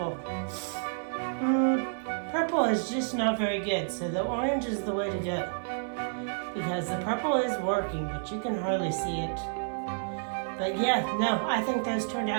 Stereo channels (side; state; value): left; silent; 58 dB below the other